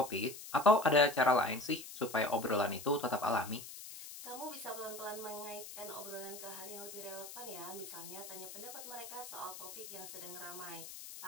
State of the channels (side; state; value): left; noise; hiss, 12 dB below the sound